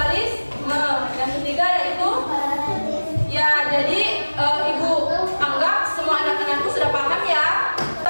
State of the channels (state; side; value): inverted; both; correlation -1.00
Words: Yang ketiga yaitu ya, jadi ibu anggap semua anak-anakku sudah paham ya.